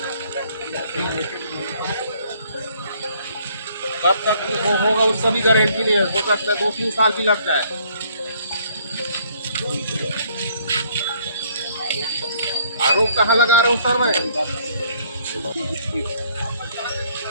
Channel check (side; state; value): both; inverted; correlation -0.63